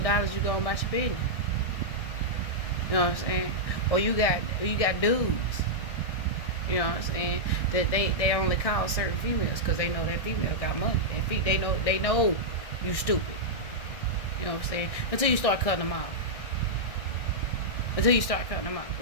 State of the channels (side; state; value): right; late; 1.6 ms